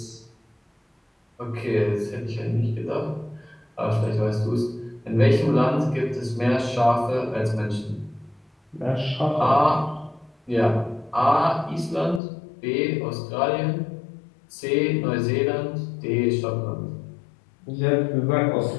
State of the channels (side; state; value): right; drops out; at 12.2 s